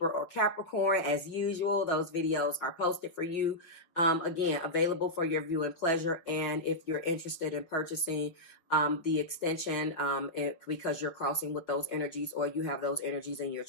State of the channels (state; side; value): late; right; 5.5 ms